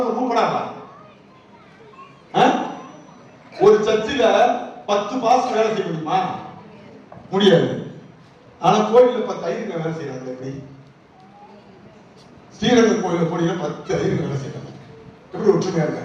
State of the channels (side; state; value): both; identical; correlation 1.00